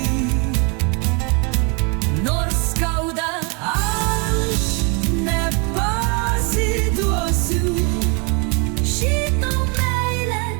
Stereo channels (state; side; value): quieter; left; 33.7 dB